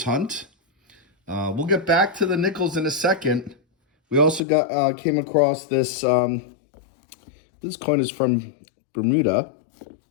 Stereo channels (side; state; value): right; drops out; at 4.4 s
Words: hunt. We'll get back to the nickels in a second. We also came across this, this coin is from Bermuda,